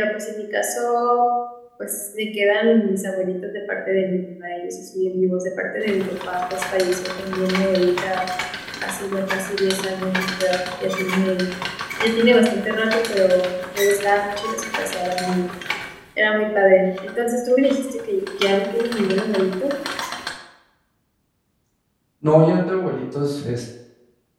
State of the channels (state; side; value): identical; both; correlation 1.00